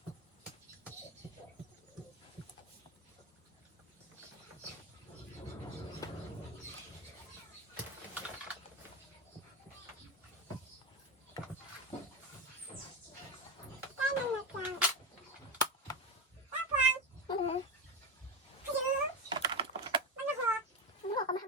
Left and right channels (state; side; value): normal; both; correlation 0.15